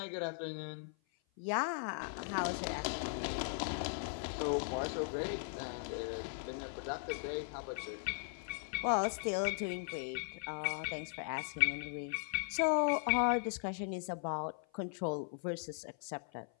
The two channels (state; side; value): silent; right; 52 dB below the other